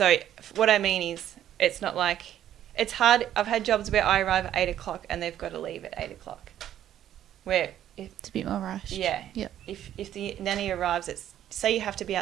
what I mean is, it's not like, it's hard. I've had jobs where I arrive at 8 o'clock and they've got to leave at 8 o'clock. Where it's a bit more rushed. If the nanny arrives say you have to be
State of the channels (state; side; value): quieter; left; 11.3 dB